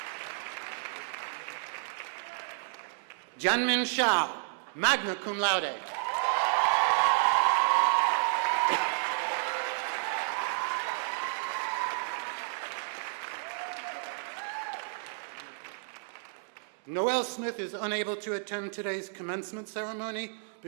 Janmin Shah, magna cum laude. Noelle Smith is unable to attend today's commencement ceremony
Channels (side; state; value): left; silent; digital silence